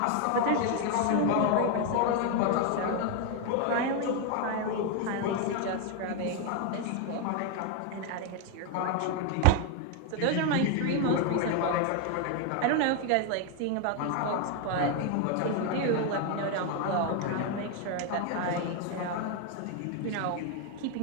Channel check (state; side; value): different; both; correlation 0.01